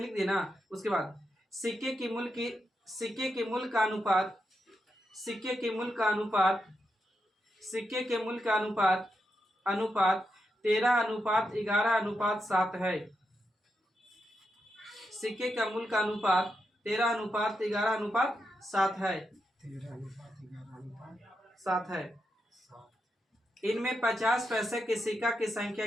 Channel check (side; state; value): both; normal; correlation 0.85